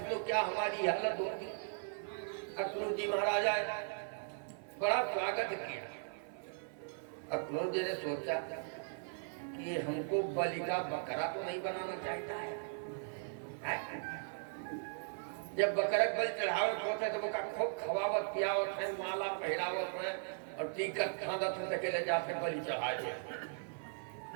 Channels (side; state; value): left; silent; 52 dB below the other